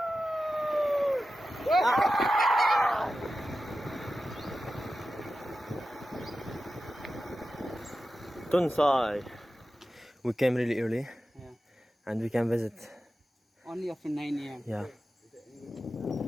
TONSAI. We came really early, Yeah. and we can visit. Only after 9 a.m. Yeah.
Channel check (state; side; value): normal; both; correlation 0.92